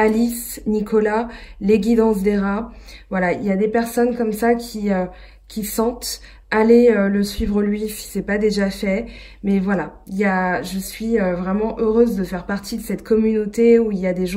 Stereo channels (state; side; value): identical; both; correlation 1.00